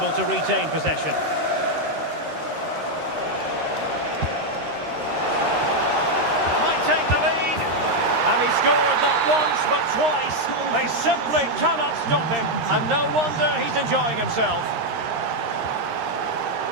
to retain possession. Might take the lead. And he scored not once but twice. They simply cannot stop him. And no wonder he's enjoying himself.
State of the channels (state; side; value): late; left; 13 ms